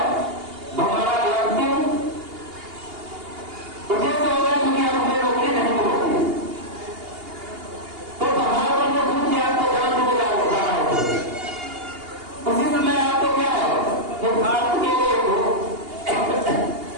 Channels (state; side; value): late; left; 2.8 ms